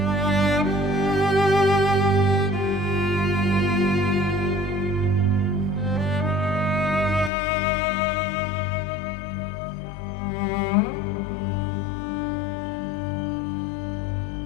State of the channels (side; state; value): right; drops out; at 7.3 s